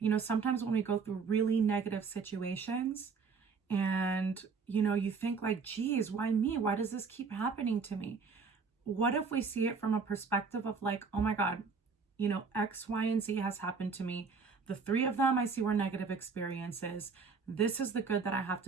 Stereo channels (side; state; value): left; quieter; 5.2 dB